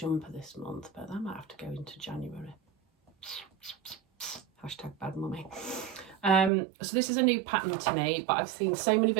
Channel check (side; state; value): left; drops out; at 6.5 s